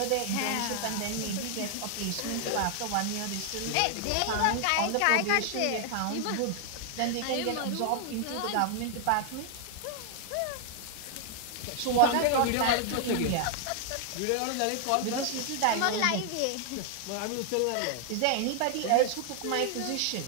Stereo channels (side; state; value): both; different; correlation 0.00